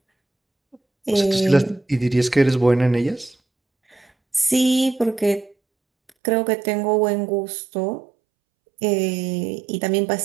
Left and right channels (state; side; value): drops out; left; at 6.1 s